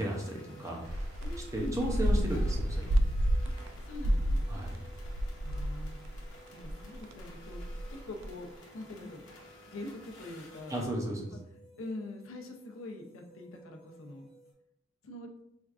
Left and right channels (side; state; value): both; normal; correlation 0.88